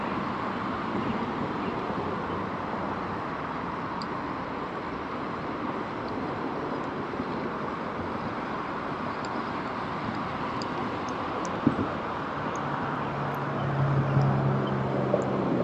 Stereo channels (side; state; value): both; identical; correlation 1.00